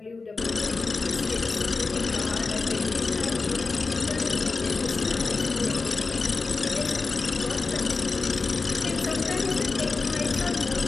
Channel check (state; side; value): quieter; right; 4.0 dB